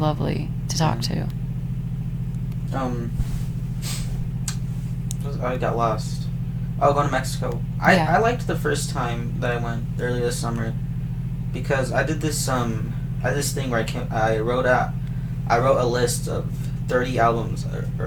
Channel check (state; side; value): identical; both; correlation 1.00